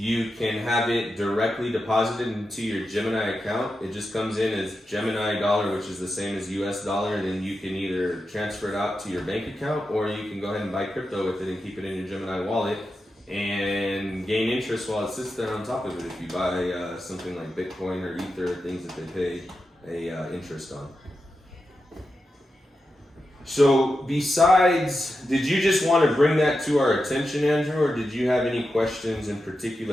can have it directly deposited into your Gemini account. It just comes in as Gemini dollar, which is the same as US dollar, and then you can either transfer it out to your bank account, or you can go ahead and buy crypto with it and keep it in your Gemini wallet and gain interest while it sits there on top of it if you buy something like Bitcoin or Ether, things that they pay a interest on. So besides, did you just want to bring that to our attention, Andrew, or did you have any questions in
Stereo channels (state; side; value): normal; both; correlation 0.89